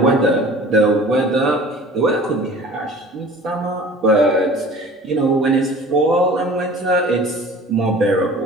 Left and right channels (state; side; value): normal; both; correlation 0.45